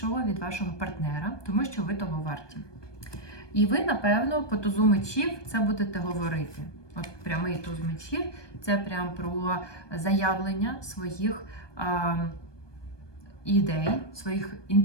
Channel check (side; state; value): right; late; 1.2 ms